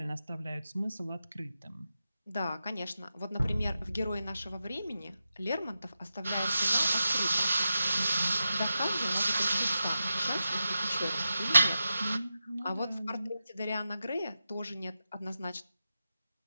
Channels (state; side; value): inverted; both; correlation -0.91